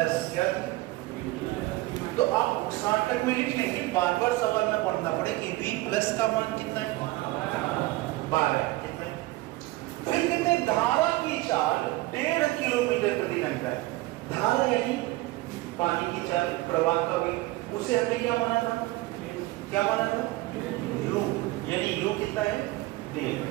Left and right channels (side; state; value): left; quieter; 19.4 dB